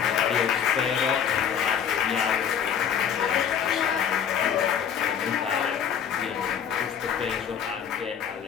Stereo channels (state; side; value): quieter; right; 8.1 dB